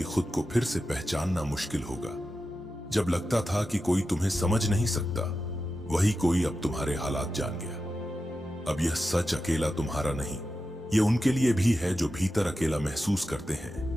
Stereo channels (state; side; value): normal; both; correlation 0.91